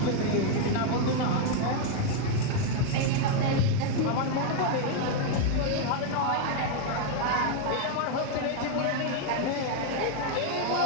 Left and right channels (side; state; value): both; different; correlation 0.00